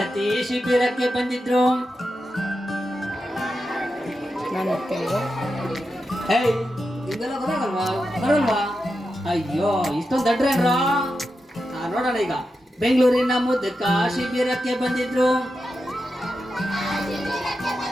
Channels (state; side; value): normal; both; correlation 0.89